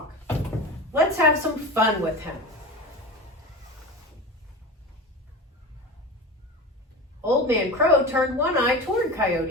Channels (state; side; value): normal; both; correlation 0.30